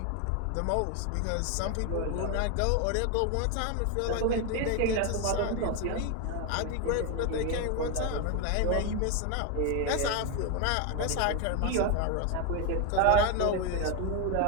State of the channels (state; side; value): different; both; correlation 0.01